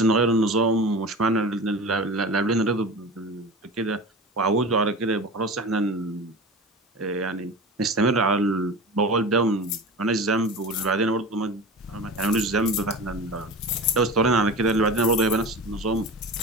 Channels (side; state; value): both; normal; correlation 0.32